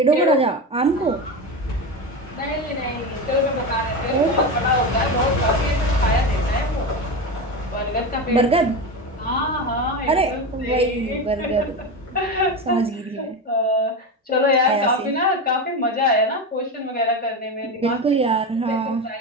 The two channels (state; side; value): normal; both; correlation 0.20